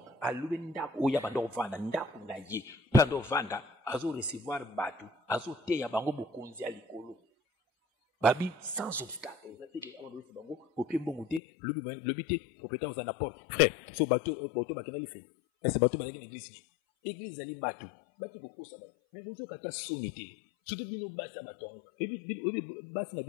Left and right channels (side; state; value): right; drops out; at 11.4 s